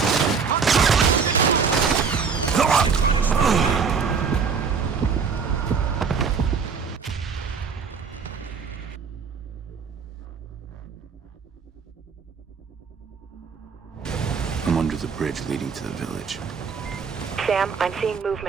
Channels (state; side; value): quieter; left; 5.8 dB